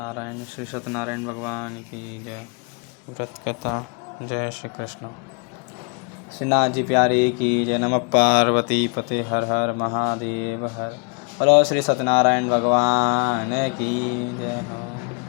श्री सत्यनारायण भगवान की जय। व्रत कथा। जय श्री कृष्ण। श्रीनाथ जी प्यारे की जय। नमः पार्वती पते हर हर महादेव हर। बोलो श्री सत्यनारायण भगवान की जय।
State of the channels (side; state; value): right; quieter; 34.8 dB